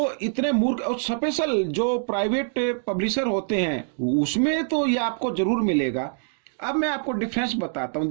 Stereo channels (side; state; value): left; silent; digital silence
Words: इतने मूर्ख, और स्पेशल जो प्राइवेट पब्लिशर होते हैं उसमें तो ये आपको जरूर मिलेगा। अब मैं आपको डिफरेंस बताता हूं।